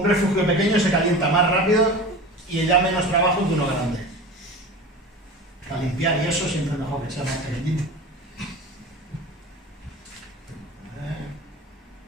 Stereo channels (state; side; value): normal; both; correlation 0.33